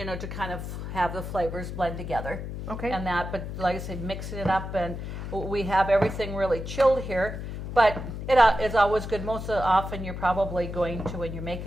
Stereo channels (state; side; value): noise; left; hum, 7 dB below the sound